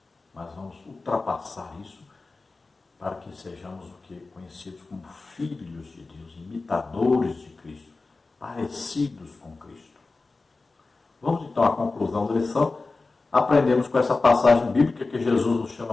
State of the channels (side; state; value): right; quieter; 3.7 dB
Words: Mas vamos ultrapassar isso para que sejamos o que conhecidos como filhos de Deus, imitadores de Cristo, parecidos com Cristo. Vamos então à conclusão da lição. Aprendemos com essa passagem bíblica que Jesus nos